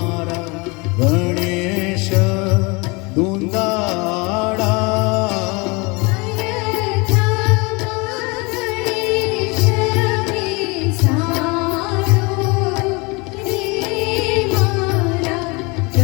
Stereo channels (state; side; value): quieter; right; 27.4 dB